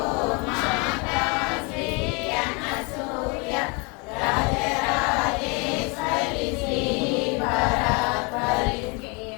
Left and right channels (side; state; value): right; quieter; 30.9 dB